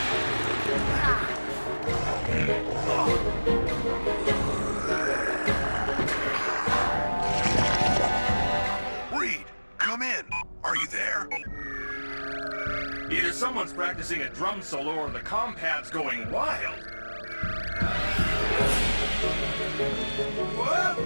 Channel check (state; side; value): inverted; both; correlation -1.00